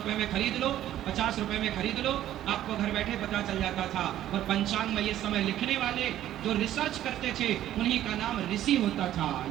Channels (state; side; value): quieter; left; 12.6 dB